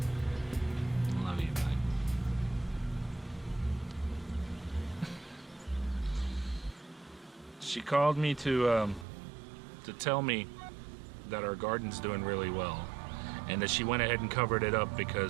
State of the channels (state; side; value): drops out; left; at 9.1 s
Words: She called me to tell me that our garden's doing really well, and that she went ahead and covered it up